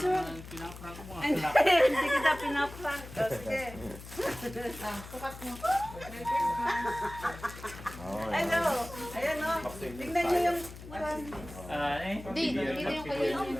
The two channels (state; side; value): noise; left; hum, 14 dB below the sound